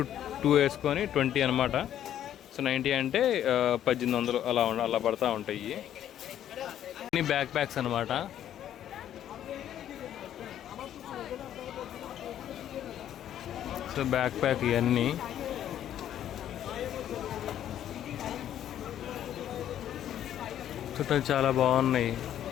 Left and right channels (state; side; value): quieter; right; 10.9 dB